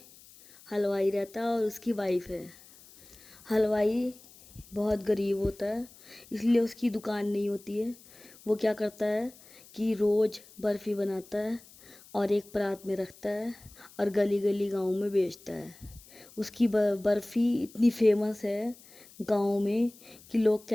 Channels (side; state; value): left; noise; hiss, 23 dB below the sound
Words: حلوائی رہتا ہے اور اس کی وائف ہے۔ حلوائی بہت غریب ہوتا ہے، اس لیے اس کی دکان نہیں ہوتی ہے۔ وہ کیا کرتا ہے کہ روز برفی بناتا ہے اور ایک پرات میں رکھتا ہے اور گلی گلی گاؤں میں بیچتا ہے۔ اس کی برفی اتنی فیمس ہے گاؤں میں کہ لوگ